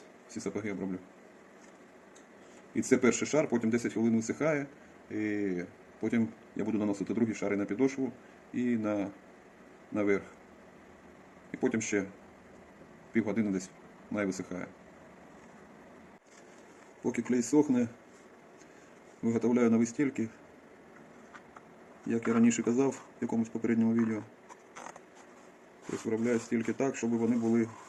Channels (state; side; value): identical; both; correlation 1.00